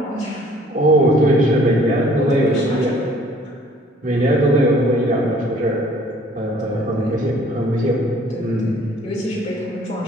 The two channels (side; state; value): both; normal; correlation 0.57